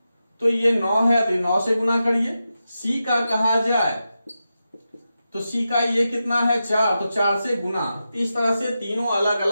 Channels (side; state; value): both; inverted; correlation -0.90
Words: तो ये 9 है तो 9 से गुना करिए। सी का कहा जाए तो सी का ये कितना है 4, तो 4 से गुना। इस तरह से तीनों अलग